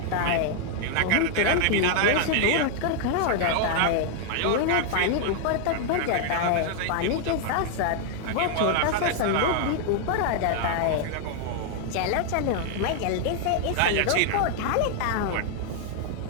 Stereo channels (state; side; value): different; both; correlation 0.00